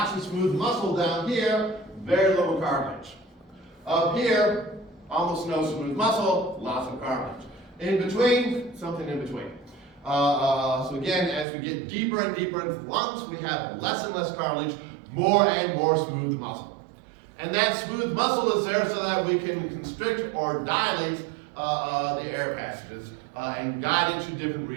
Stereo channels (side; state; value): left; drops out; at 11.5 s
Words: of smooth muscle down here, very little cartilage. Up here, almost no smooth muscle, lots of cartilage. In between, something in between. So again, as we get deeper and deeper into the lungs, we have less and less cartilage, more and more smooth muscle. And that smooth muscle is there so that we can constrict or dilate the air passages and guide into different